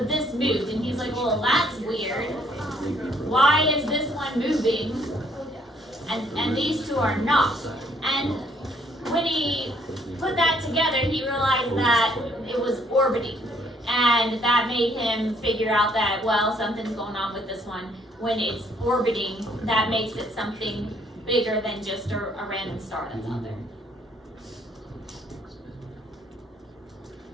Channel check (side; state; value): both; normal; correlation 0.65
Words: this moved. And he's like, well, that's weird. Why is this one moving, and these two are not? And when he put that together, he realized that it was orbiting. And that made him figure out that, well, something's going on with this one. When it's orbiting, that makes it something bigger than just a random star that's out there.